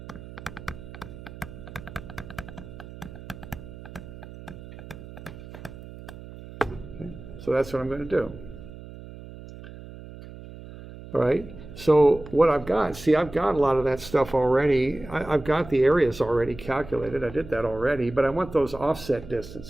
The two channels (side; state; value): right; noise; hum, 15 dB below the sound